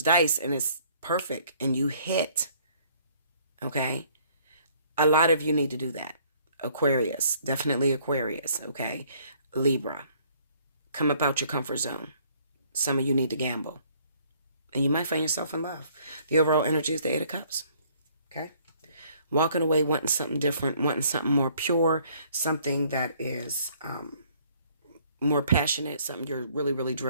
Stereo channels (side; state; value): both; inverted; correlation -0.61